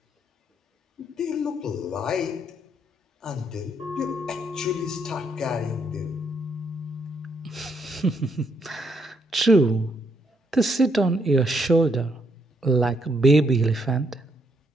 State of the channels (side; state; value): both; normal; correlation 0.74